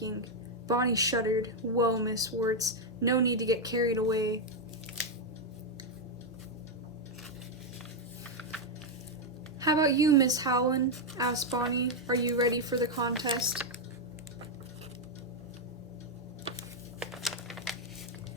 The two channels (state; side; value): normal; both; correlation 0.02